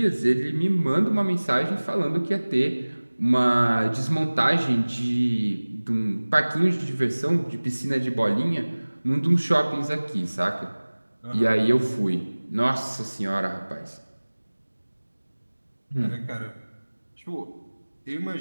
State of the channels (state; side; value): inverted; both; correlation -1.00